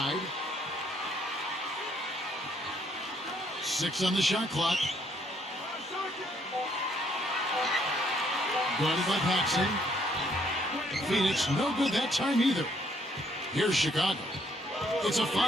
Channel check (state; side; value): normal; both; correlation 0.68